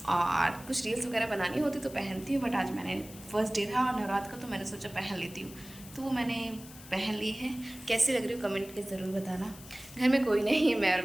और कुछ रील्स वगैरह बनानी होती तो पहनती हूँ, बट आज मैंने फर्स्ट डे था और नवरात्र का तो मैंने सोचा पहन लेती हूँ, तो वो मैंने पहन ली है। कैसी लग रही हो कमेंट के ज़रूर बताना। घर में कोई नहीं है, मैं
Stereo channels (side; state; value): left; noise; hiss, 18 dB below the sound